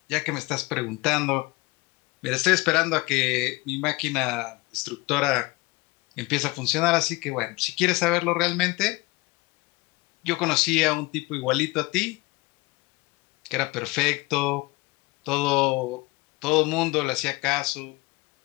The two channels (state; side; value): quieter; right; 22.8 dB